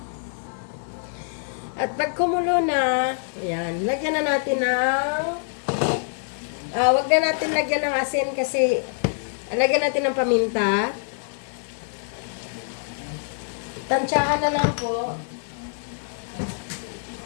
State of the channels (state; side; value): silent; right; 62 dB below the other